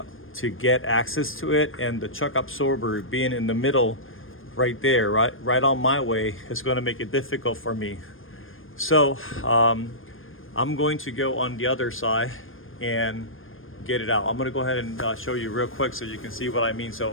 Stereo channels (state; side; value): late; right; 0.59 ms